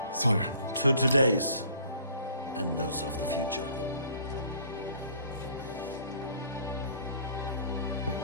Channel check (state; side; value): inverted; both; correlation -0.54